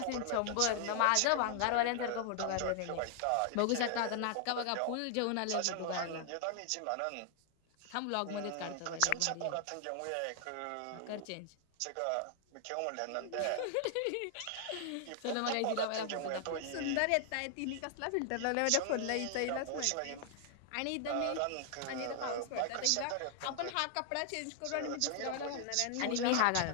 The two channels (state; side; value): different; both; correlation 0.00